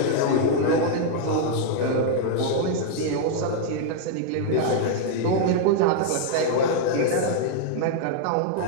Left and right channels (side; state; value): both; different; correlation -0.01